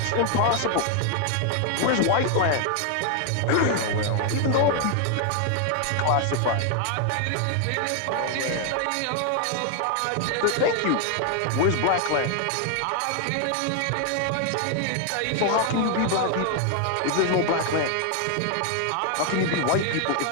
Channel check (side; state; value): both; different; correlation 0.00